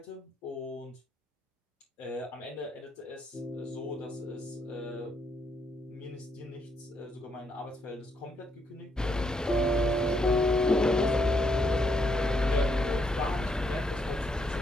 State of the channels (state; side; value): normal; both; correlation 0.75